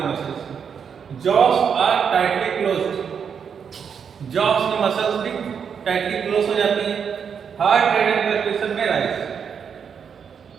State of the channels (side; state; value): left; quieter; 7.0 dB